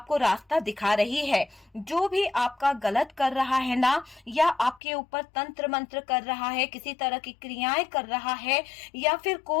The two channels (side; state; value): right; drops out; at 4.8 s